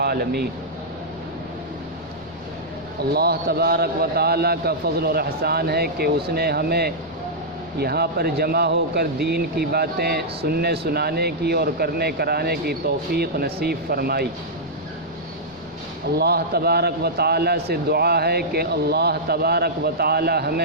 اللہ تبارک و تعالیٰ کا فضل اور احسان ہے کہ اس نے ہمیں یہاں پر جمع ہو کر دین کی باتیں سننے سنانے کی اور کرنے کرانے کی توفیق نصیب فرمائی۔ اللہ تبارک و تعالیٰ سے دعا ہے کہ اللہ تبارک و تعالیٰ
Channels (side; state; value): both; normal; correlation -0.09